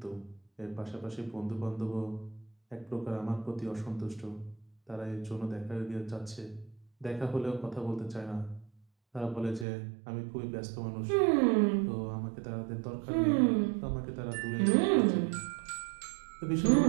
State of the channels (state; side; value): drops out; left; at 9.7 s